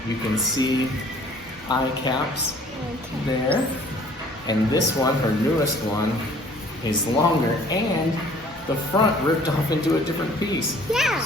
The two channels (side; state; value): both; normal; correlation 0.54